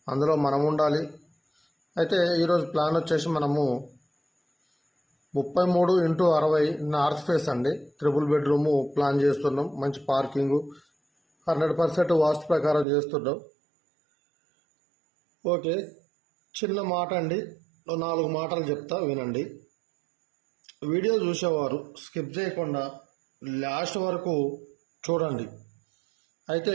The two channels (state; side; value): drops out; left; at 12.9 s